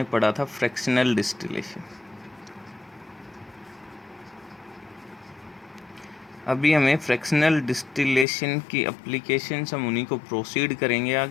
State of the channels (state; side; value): drops out; right; at 8.2 s